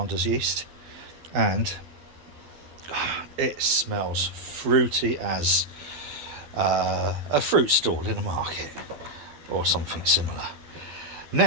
yeast, and it smells fruity as a fruit stall in a market or something similar.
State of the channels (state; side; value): late; left; 12 ms